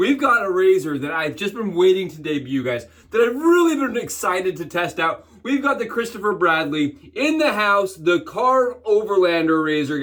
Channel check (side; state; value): both; identical; correlation 1.00